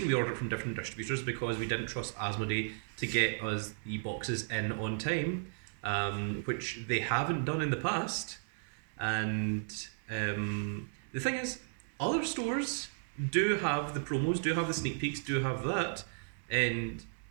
we ordered from different distributors is because we didn't trust Asmodee to get us the boxes in on time, which they haven't done in the past. And the thing is, other stores do have the promos, do have the sneak peeks, do have that, and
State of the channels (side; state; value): left; silent; 55 dB below the other